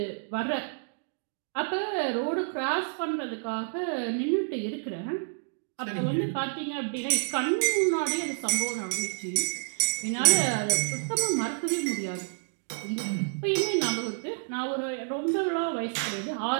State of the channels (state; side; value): silent; left; digital silence